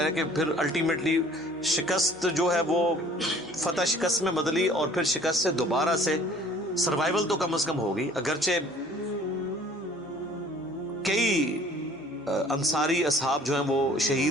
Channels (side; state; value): both; normal; correlation 0.52